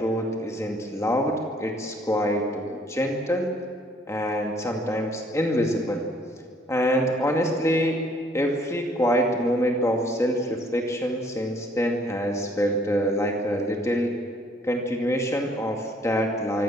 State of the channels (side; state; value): both; normal; correlation 0.62